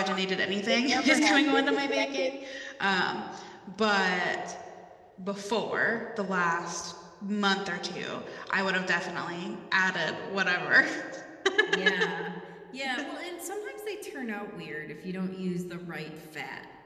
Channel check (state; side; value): identical; both; correlation 1.00